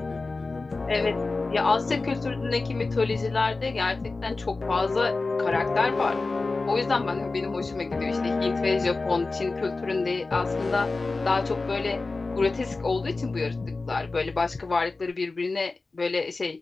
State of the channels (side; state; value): right; quieter; 3.6 dB